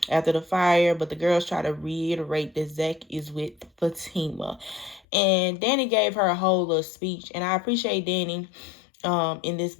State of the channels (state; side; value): drops out; right; at 5.0 s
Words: after the fire, but the girls try to reiterate that Zach is with Fatima. And Danny gave her a whole little speech, and I appreciate Danny in this